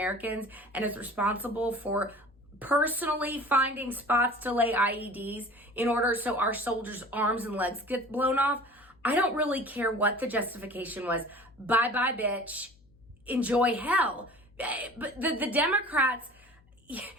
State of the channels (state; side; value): noise; left; hum, 30 dB below the sound